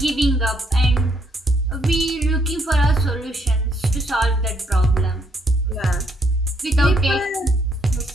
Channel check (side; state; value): both; normal; correlation 0.71